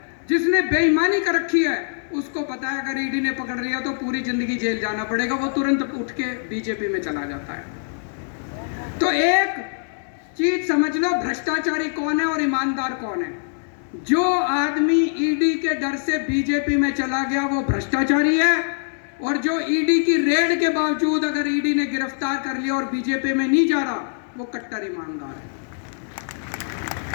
जिसने बेईमानी कर रखी है, उसको पता है अगर ईडी ने पकड़ लिया तो पूरी जिंदगी जेल जाना पड़ेगा, वो तुरंत उठ के बीजेपी में चला जाता है। तो एक चीज समझ लो, भ्रष्टाचारी कौन है और ईमानदार कौन है। जो आदमी ईडी के डर से बीजेपी में चला गया वो भ्रष्टाचारी है, और जो ईडी की रेड के बावजूद अगर ईडी ने गिरफ्तार कर लिया और बीजेपी में नहीं जा रहा, वो कट्टर ईमानदार है।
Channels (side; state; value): right; silent; digital silence